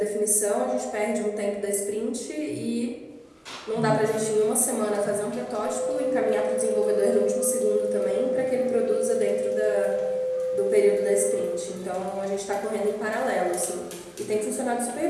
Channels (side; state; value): both; identical; correlation 1.00